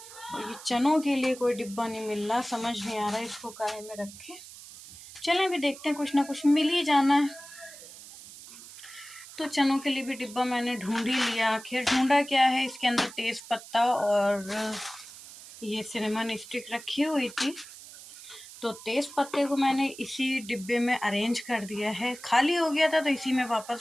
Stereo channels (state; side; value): noise; right; hiss, 16 dB below the sound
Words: और ये चनों के लिए कोई डिब्बा नहीं मिल रहा, समझ नहीं आ रहा इसको काहे में रखें। चलें अभी देखते हैं, कुछ ना कुछ मिल ही जाना है। तो चनों के लिए भी डिब्बा मैंने ढूंढ ही लिया। आखिर ढूंढा क्या है, इसके अंदर तेज पत्ता और ये सिनेमन स्टिक रखी हुई थी। तो तेज पत्ते को मैंने इसी डिब्बे में अरेंज कर दिया है। खाली हो गया था तो इसी में